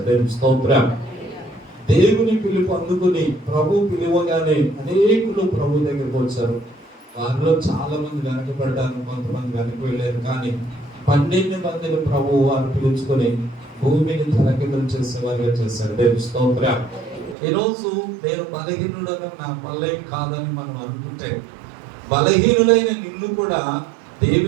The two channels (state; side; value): drops out; left; at 17.4 s